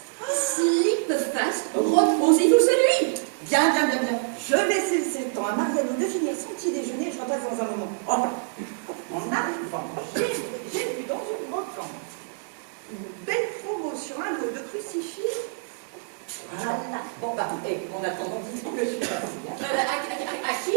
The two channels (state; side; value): silent; left; digital silence